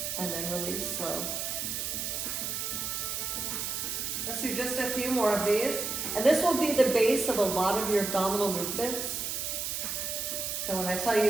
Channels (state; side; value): noise; right; hiss, 2 dB below the sound